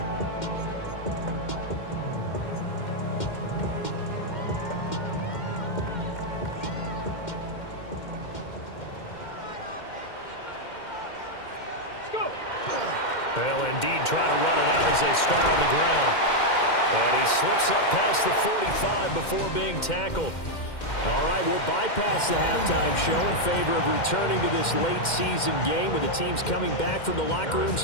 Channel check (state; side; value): late; right; 2.1 ms